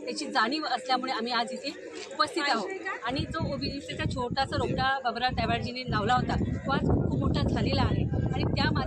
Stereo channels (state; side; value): identical; both; correlation 1.00